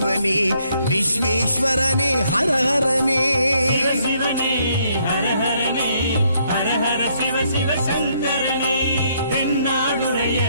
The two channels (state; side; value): inverted; both; correlation -0.70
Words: விஸ்வேஸ்வரனே ஹரஹரனே. சிவசிவனே, ஹரஹரனே, ஹரஹர சிவ சிவ சங்கரனே, தென்னாடுடைய